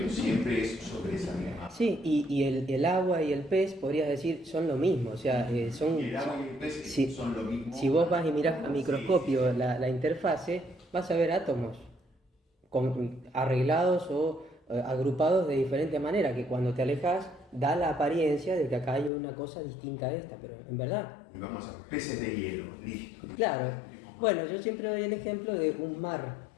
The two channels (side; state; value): right; drops out; at 19.1 s